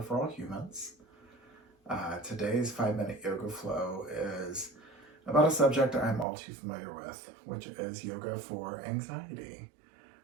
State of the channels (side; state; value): left; drops out; at 6.2 s